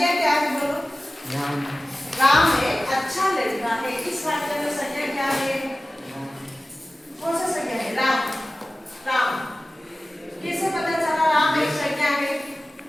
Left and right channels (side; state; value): both; normal; correlation 0.96